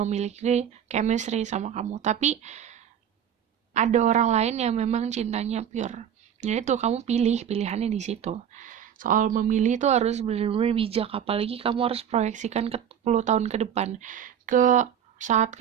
chemistry sama kamu, tapi ada orang lain yang memang cintanya pure. Jadi tuh kamu pilihannya di situ. Soal memilih tuh harus benar-benar bijak, apalagi kamu harus proyeksikan ke 10 tahun ke depan. Ke saat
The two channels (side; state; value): left; quieter; 9.0 dB